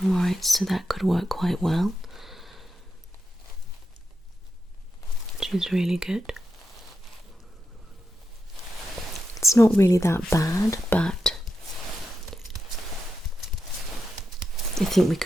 Alright, so that could work quite well, which is really good. It's not really that bad, but I think we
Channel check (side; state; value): both; normal; correlation 0.88